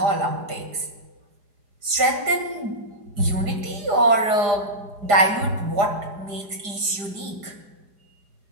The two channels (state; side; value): late; left; 5.0 ms